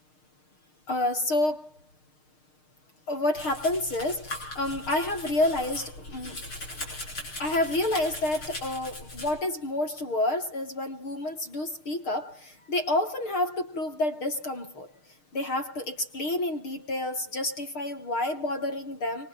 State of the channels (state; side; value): late; right; 6.5 ms